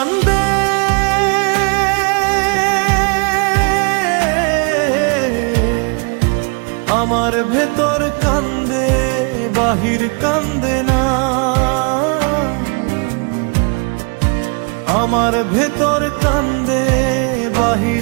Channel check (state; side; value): quieter; left; 35.1 dB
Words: আমার ভেতর কান্দে, বাহির কান্দে না। আমার ভেতর কান্দে,